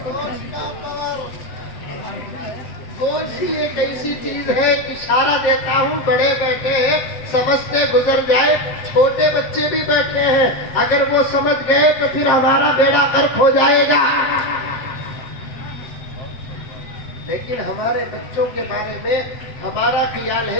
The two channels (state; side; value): late; right; 7.5 ms